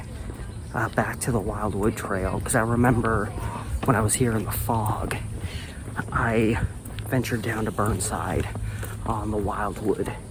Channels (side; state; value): both; identical; correlation 1.00